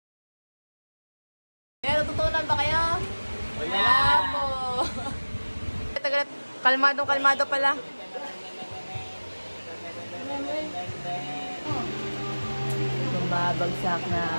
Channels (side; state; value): both; inverted; correlation -1.00